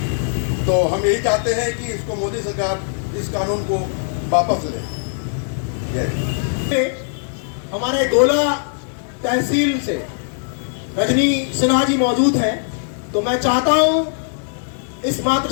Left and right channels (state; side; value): silent; right; 66 dB below the other